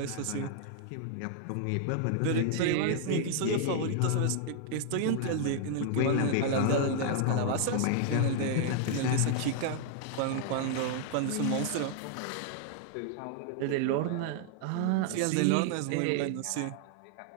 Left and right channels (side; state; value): both; different; correlation 0.00